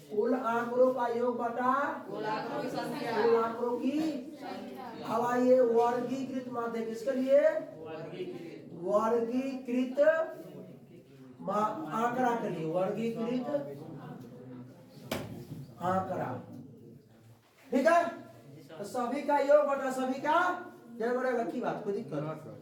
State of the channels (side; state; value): both; identical; correlation 1.00